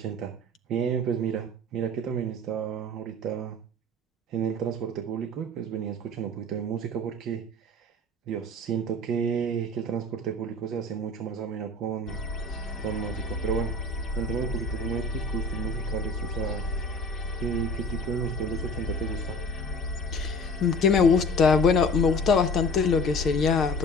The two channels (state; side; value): normal; both; correlation 0.42